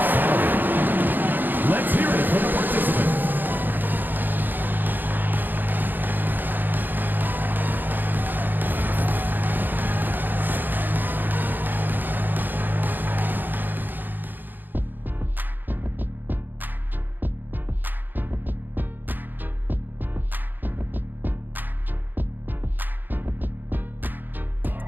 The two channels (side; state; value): left; late; 0.089 ms